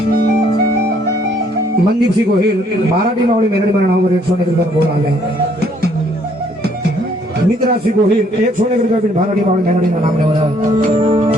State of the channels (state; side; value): normal; both; correlation 0.65